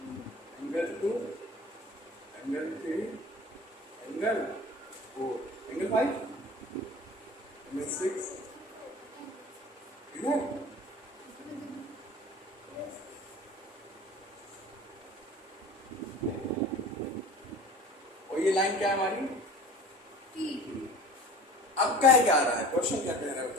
angle 2, angle 3, angle 4, angle 5, angle 6, इधर और ये लाइन क्या है हमारी, अब कह क्या रहा है, क्वेश्चन क्या कह रहा है,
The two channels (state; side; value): normal; both; correlation 0.41